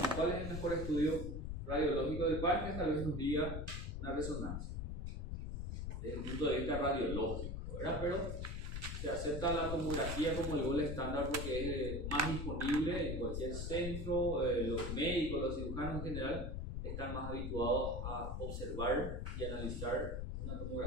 cuál es el mejor estudio radiológico del páncreas, tal vez nos diga una resonancia, desde el punto de vista radiológico, ¿verdad? Pero se acepta la tomografía como el gold estándar porque es más disponible en cualquier centro. Los médicos, los cirujanos en general están más habituados a observar y analizar una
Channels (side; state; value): left; noise; rumble, 4 dB below the sound